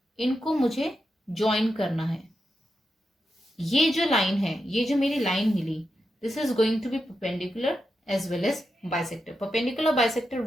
इनको मुझे ज्वाइन करना है। ये जो लाइन है, ये जो मेरी लाइन मिली, this is going to be perpendicular as well as bisector. Perpendicular bisector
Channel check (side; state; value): both; normal; correlation 0.87